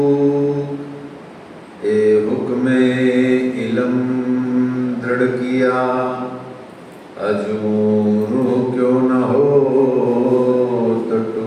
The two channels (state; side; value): identical; both; correlation 1.00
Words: ए हुक्मे इलम दृढ़ किया, अजूरू क्यों न हो